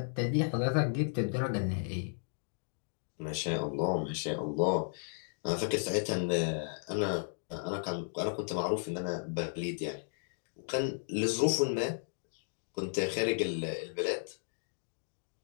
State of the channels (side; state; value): right; silent; digital silence